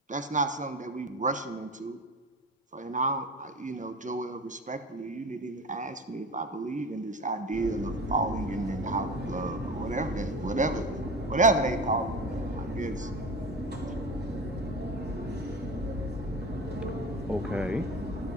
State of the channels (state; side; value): normal; both; correlation 0.30